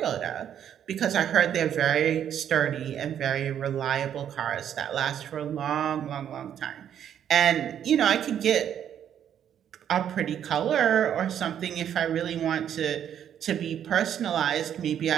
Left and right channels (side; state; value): left; quieter; 9.5 dB